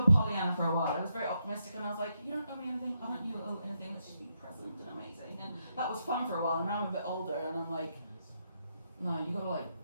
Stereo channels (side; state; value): both; inverted; correlation -0.81